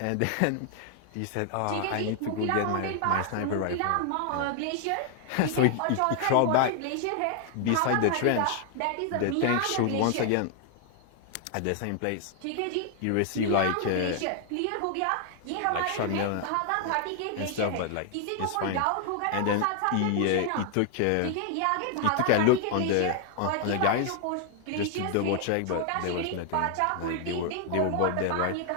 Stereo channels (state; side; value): different; both; correlation 0.00